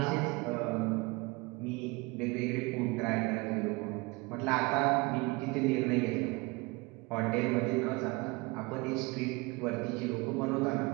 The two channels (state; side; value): quieter; left; 25.5 dB